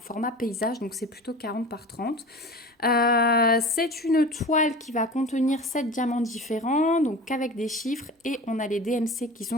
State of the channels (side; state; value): both; normal; correlation 0.36